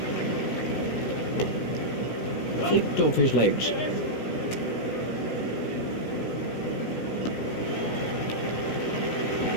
Flicked off his legs.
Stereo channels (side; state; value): right; late; 16 ms